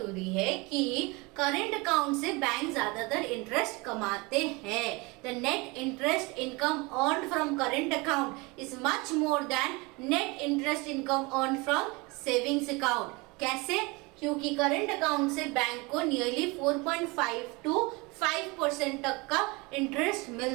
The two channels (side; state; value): left; quieter; 25.9 dB